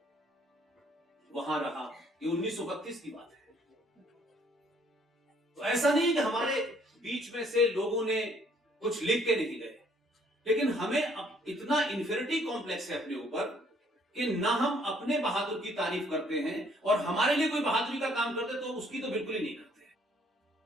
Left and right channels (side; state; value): both; normal; correlation 0.63